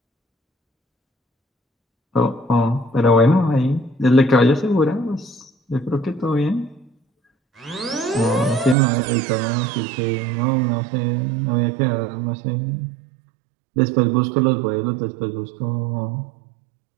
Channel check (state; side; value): drops out; left; at 8.8 s